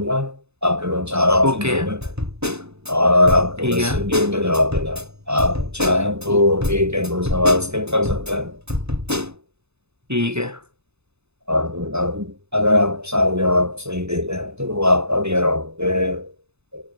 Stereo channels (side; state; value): left; late; 0.80 ms